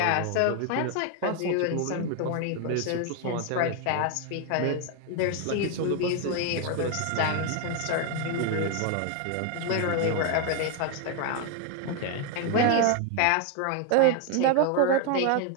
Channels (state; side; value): different; both; correlation 0.01